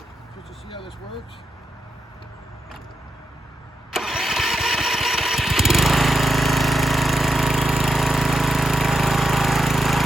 just to see how this works.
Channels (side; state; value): both; normal; correlation 0.85